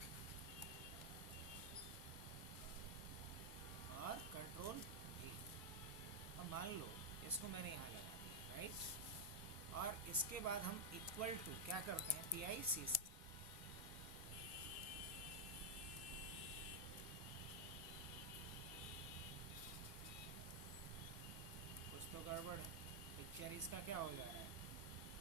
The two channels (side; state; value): both; normal; correlation 0.00